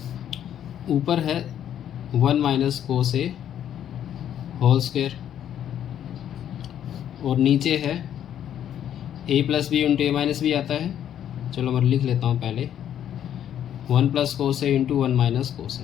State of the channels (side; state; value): right; quieter; 10.2 dB